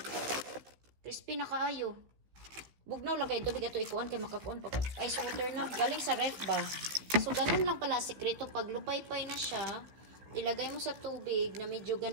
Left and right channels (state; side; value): late; left; 15 ms